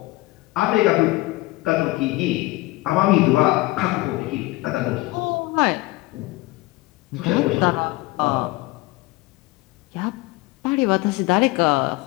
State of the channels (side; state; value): right; quieter; 20.4 dB